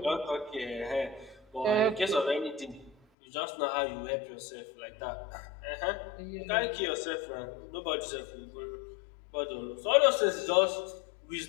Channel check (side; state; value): right; drops out; at 3.0 s